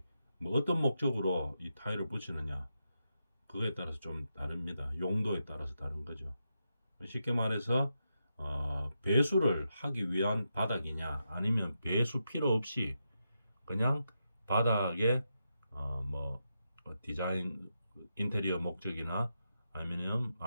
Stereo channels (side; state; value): both; inverted; correlation -0.85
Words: 뭐 어떤 목적으로 이 타일을 붙이느냐 그거에 따라서 좀 다릅니다. 용도에 따라서 다른 거죠. 쉽게 말해서 배수를 하기 위한 바닥이냐 아니면 배수 필요 없이 그냥 바닥에 뭐 디자인 인테리어 목적이나